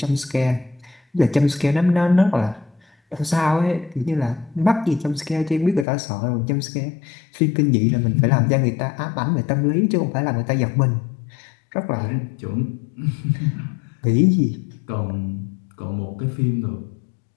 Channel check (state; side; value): drops out; right; at 5.9 s